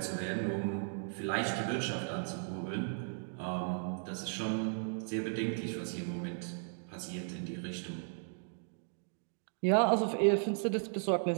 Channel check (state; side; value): silent; left; digital silence